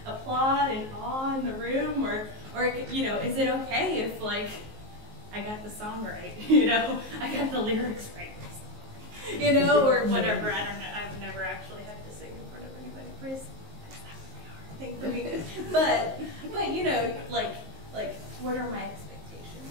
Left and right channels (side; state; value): left; late; 19 ms